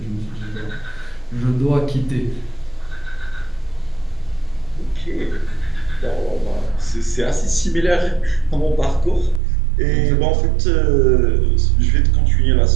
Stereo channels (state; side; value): drops out; left; at 9.4 s